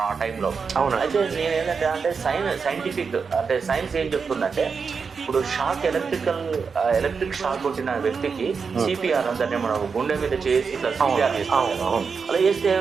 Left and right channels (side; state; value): left; quieter; 5.5 dB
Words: ఆ టైంలో. అవును. అయితే నేను ఏంటంటే అంటే సైంటిఫిక్ అంటే సైన్స్ ఏం చెప్తుందంటే ఇప్పుడు ఎలక్ట్రిక్ షాక్ కొట్టిన వ్యక్తికి సిపిఆర్ అంటే మనం గుండె మీద చేసి ఇట్లా సిపిఆర్ చేస్తాం కదా, అలా చేస్తే